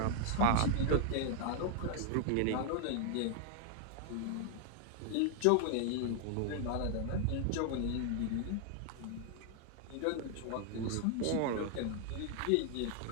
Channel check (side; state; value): both; different; correlation 0.00